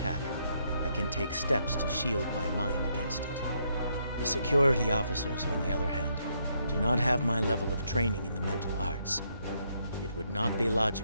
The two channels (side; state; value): both; inverted; correlation -0.75